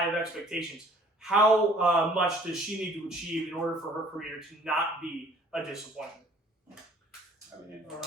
of expectations, how much does she need to achieve in order for her career to not be a disappointment?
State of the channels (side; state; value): both; normal; correlation 0.55